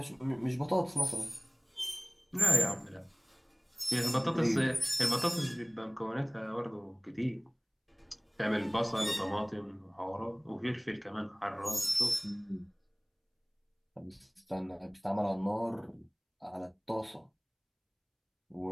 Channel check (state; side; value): identical; both; correlation 1.00